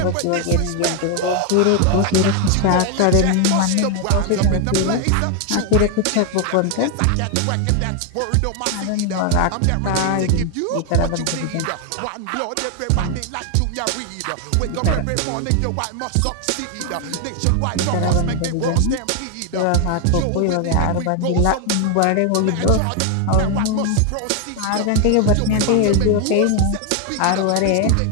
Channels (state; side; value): different; both; correlation 0.01